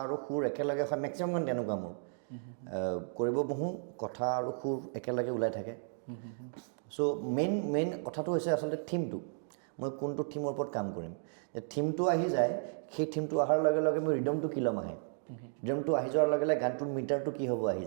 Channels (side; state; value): left; silent; digital silence